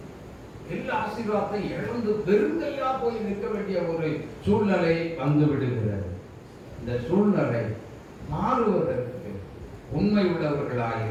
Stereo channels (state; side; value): identical; both; correlation 1.00